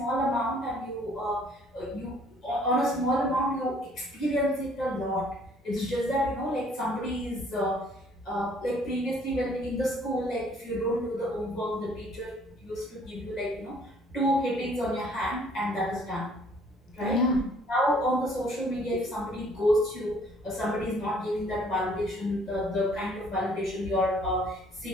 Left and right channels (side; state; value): both; normal; correlation 0.60